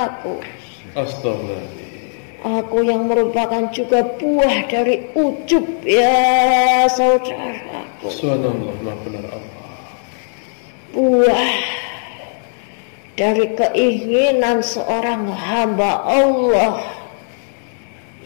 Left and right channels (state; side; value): silent; right; digital silence